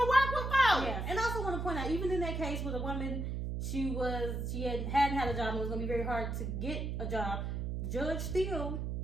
work with folks. Yeah, and I also want to point out, even in that case with a woman, she hadn't had a job and it was going to be very hard to get a job, the judge still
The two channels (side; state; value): right; noise; hum, 2 dB below the sound